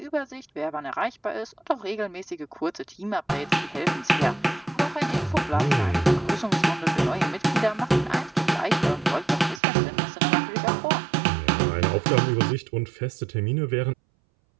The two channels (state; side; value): drops out; left; at 9.6 s